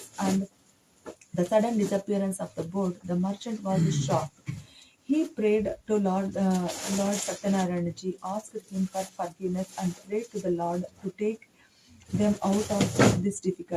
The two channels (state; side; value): identical; both; correlation 1.00